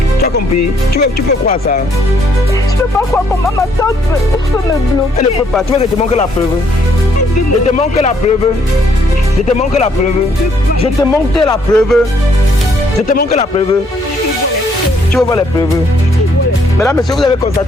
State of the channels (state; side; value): normal; both; correlation 0.68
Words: Tu as compris? Tu peux croire ça? Je ne peux pas croire comment ma tante peut me bloquer. Elle ne peut pas. Tu veux que je te montre la preuve? Je te montre la preuve. Je te montre la preuve. Je te montre la preuve. Je te montre la preuve. Tu veux voir les preuves? Mesdames, messieurs, vous avez